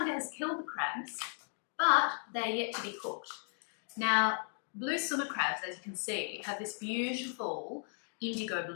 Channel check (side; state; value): right; silent; 54 dB below the other